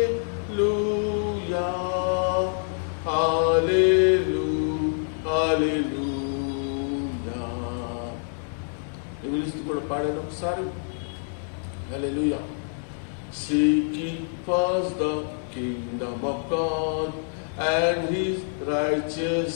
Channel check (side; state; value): right; silent; digital silence